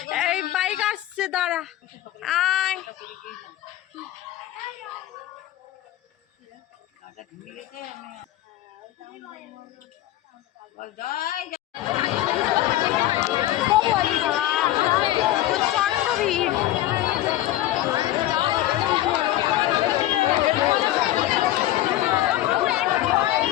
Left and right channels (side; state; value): right; quieter; 14.6 dB